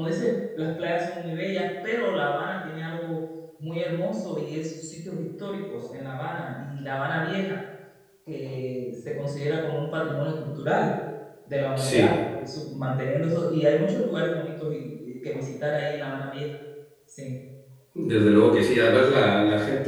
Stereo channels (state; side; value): identical; both; correlation 1.00